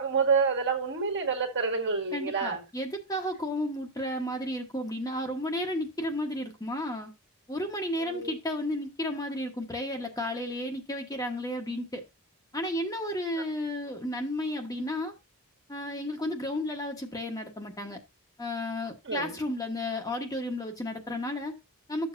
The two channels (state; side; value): normal; both; correlation 0.21